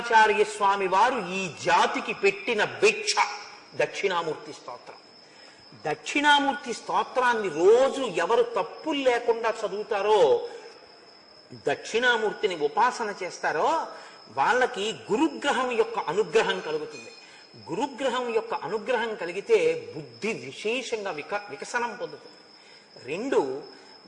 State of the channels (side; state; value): both; identical; correlation 1.00